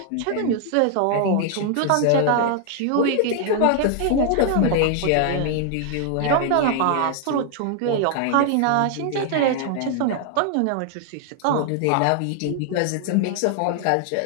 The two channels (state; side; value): different; both; correlation 0.00